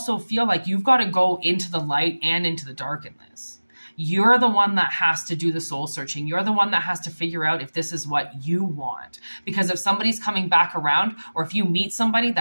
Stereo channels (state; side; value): inverted; both; correlation -1.00